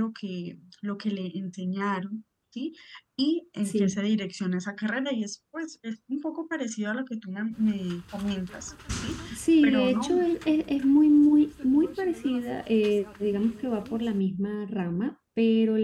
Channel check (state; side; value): identical; both; correlation 1.00